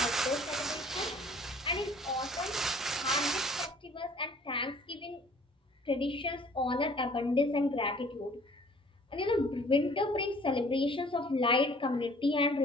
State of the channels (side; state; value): both; normal; correlation 0.54